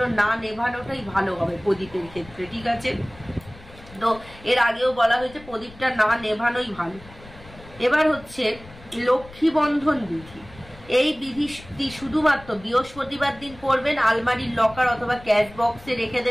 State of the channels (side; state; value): left; noise; rumble, 20 dB below the sound